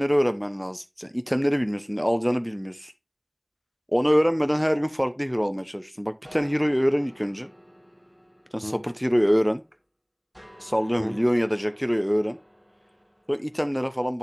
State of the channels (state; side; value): identical; both; correlation 1.00